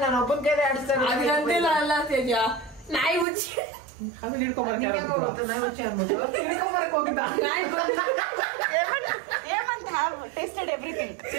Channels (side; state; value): left; drops out; at 3.2 s